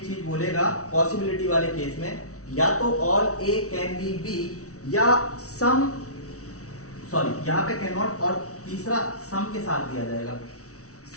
चीज बोलेगा पॉसिबिलिटी वाले केस में, या तो all A can be B, या सम, सॉरी यहां पे कैन नॉट और तीसरा सम के साथ दिया जाएगा,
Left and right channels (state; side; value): late; right; 0.65 ms